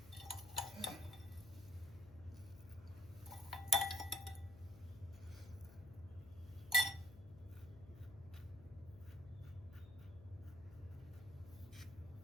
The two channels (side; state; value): left; noise; hum, 17 dB below the sound